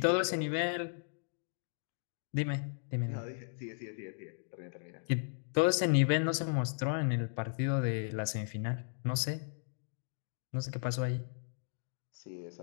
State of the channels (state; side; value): silent; right; digital silence